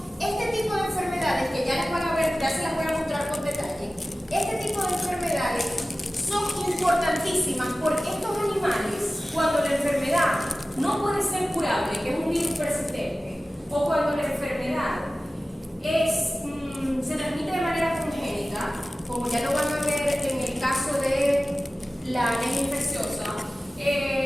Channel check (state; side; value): normal; both; correlation 0.96